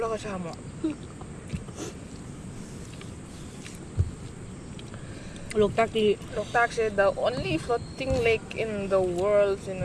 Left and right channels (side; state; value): both; identical; correlation 1.00